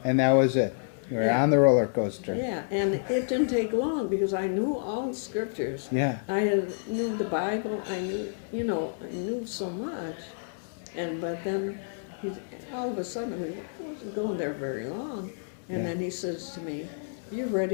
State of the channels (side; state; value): right; silent; digital silence